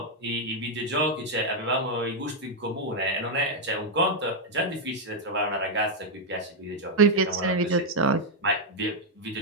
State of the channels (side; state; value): both; normal; correlation -0.01